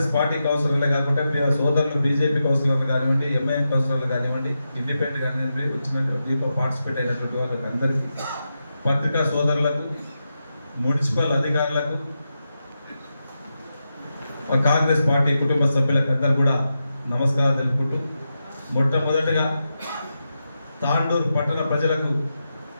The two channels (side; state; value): both; inverted; correlation -0.88